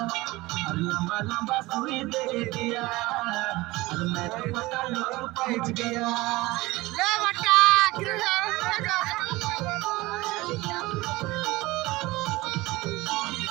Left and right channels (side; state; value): left; quieter; 20.5 dB